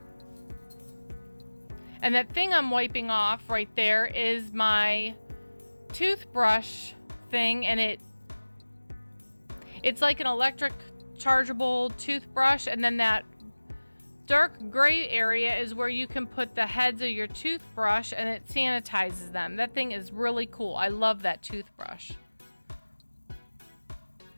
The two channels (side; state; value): both; inverted; correlation -1.00